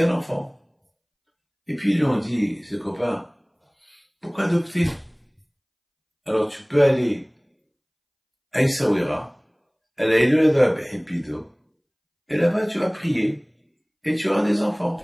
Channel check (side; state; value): both; identical; correlation 1.00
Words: un enfant. Et puis ils lui ont dit, ses copains, pourquoi adopter? Alors tu peux aller à Essaouira, à la Elohada Behipido, et là-bas tu vas prier, et tu auras des enfants.